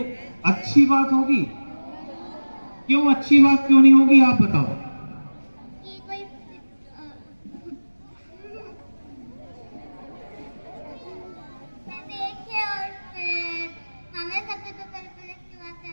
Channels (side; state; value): both; inverted; correlation -1.00